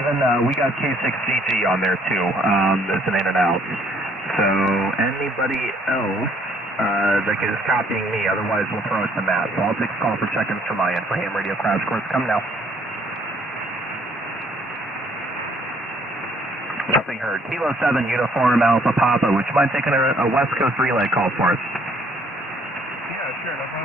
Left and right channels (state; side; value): normal; both; correlation 0.63